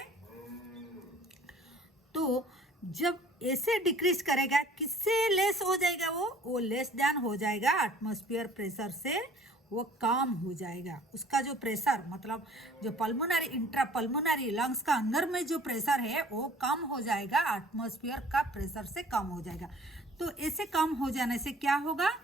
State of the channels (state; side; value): normal; both; correlation 0.52